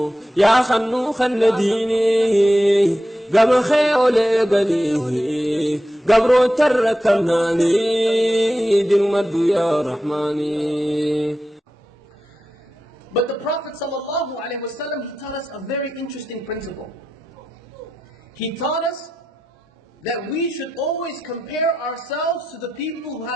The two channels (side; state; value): both; normal; correlation 0.89